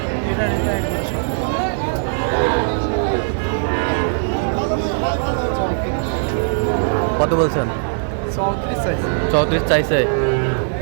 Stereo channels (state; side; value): silent; left; digital silence